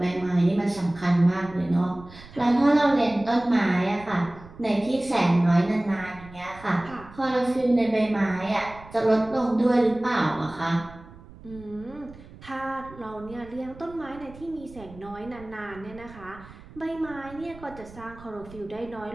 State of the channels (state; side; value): noise; right; rumble, 19 dB below the sound